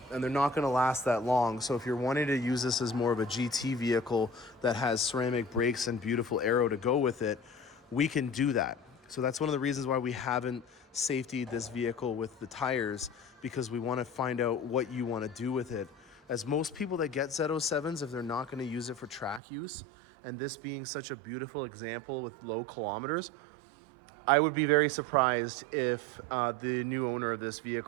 and they're not going to last that long. So if you're wanting to use this as more of a GT vehicle that has ceramic brakes and beautiful aero to go with it, we can do that. So that's one of the reasons why we haven't safetied this vehicle with the tires, because we want to find out what you want to do with it. As most people that get Z07s, if they're not going to use it for track use, and this being such a beautiful example with low kilometers, I would be very surprised if the new owner of this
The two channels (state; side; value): drops out; left; at 19.4 s